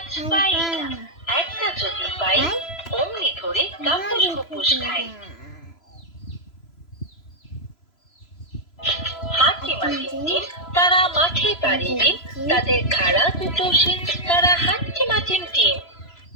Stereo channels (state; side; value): late; right; 3.0 ms